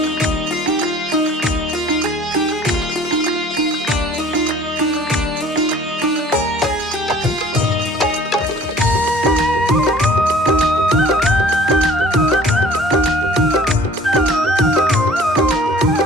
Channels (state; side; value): normal; both; correlation 0.50